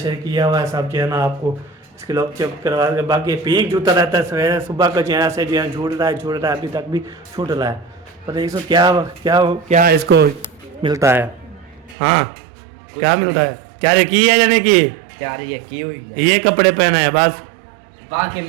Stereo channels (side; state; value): left; drops out; at 12.0 s